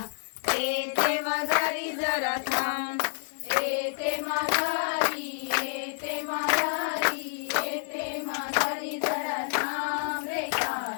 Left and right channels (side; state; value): right; silent; digital silence